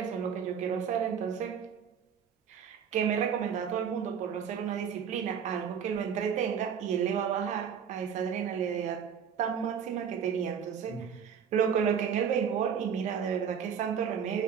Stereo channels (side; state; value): left; quieter; 7.5 dB